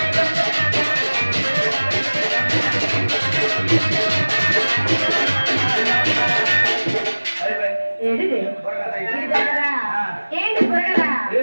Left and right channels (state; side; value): inverted; both; correlation -1.00